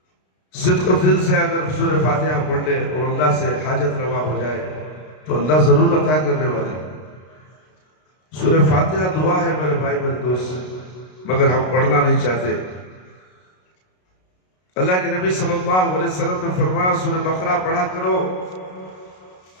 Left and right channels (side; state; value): right; late; 33 ms